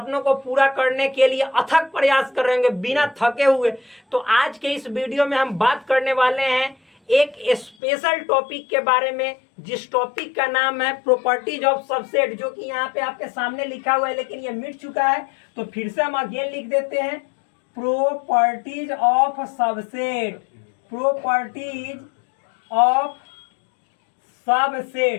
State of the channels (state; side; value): drops out; right; at 7.8 s